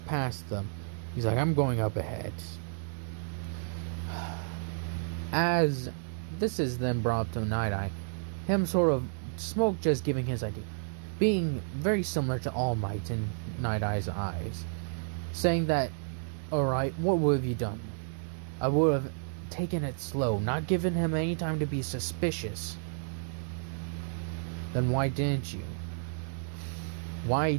them, he's like, I'm going up ahead. As this is then brought up to Nighteye, him sort of, Smoke just giving his idea, being very similar to All Might in Night-Eye's eyes, saying that, alright, what would have you done? I would have taken it slow, not given him any time to be suspicious. Then why didn't you? Why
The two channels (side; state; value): left; silent; 57 dB below the other